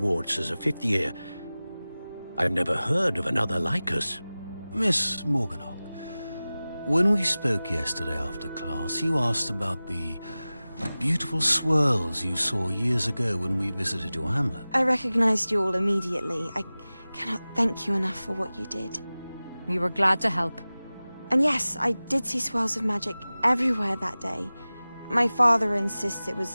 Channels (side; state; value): both; inverted; correlation -0.98